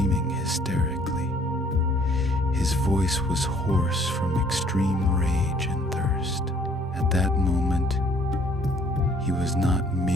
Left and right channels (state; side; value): normal; both; correlation 0.60